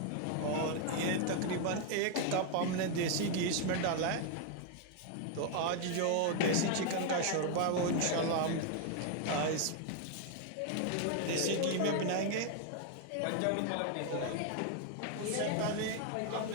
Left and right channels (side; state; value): both; different; correlation 0.00